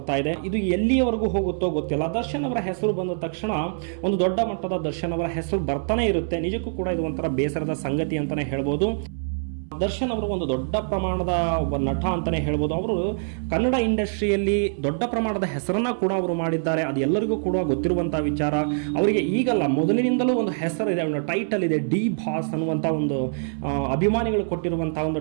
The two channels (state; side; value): silent; left; 62 dB below the other